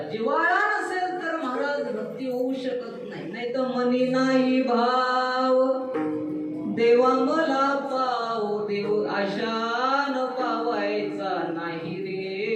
जिव्हाळा नसेल तर महाराज भक्ती होऊ शकत नाही. नाही तर मनी नाही भाव देवा मला पाव देव आशान पावायचा नाही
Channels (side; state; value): both; identical; correlation 1.00